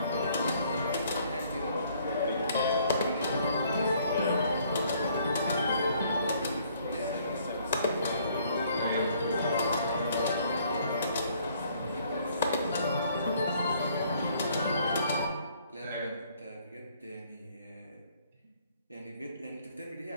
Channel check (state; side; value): inverted; both; correlation -0.63